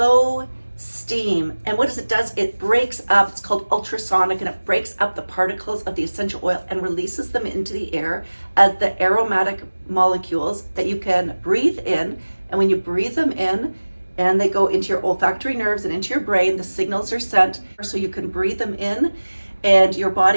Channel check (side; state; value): both; inverted; correlation -1.00